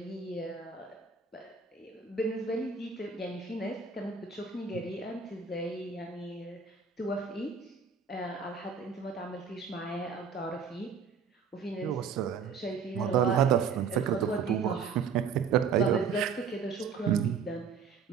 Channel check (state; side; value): quieter; left; 6.0 dB